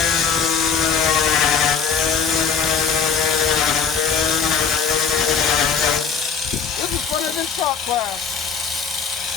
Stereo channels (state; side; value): quieter; right; 6.1 dB